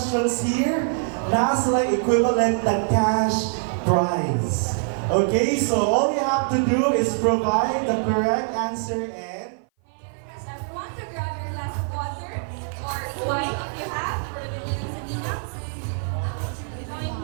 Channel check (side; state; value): left; silent; 57 dB below the other